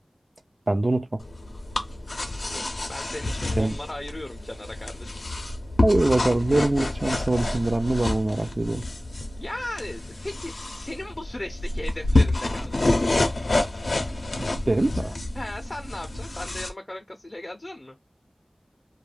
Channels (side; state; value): both; normal; correlation 0.97